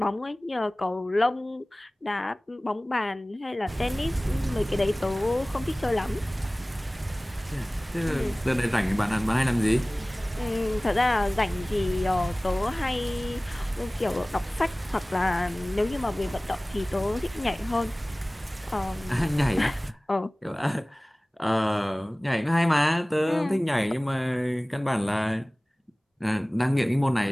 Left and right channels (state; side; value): normal; both; correlation 0.98